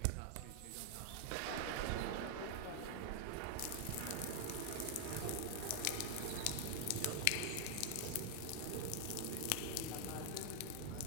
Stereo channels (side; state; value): both; different; correlation 0.00